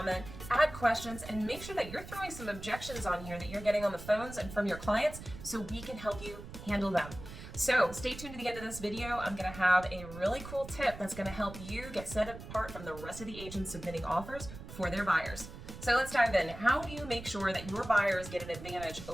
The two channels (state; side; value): noise; right; rumble, 12 dB below the sound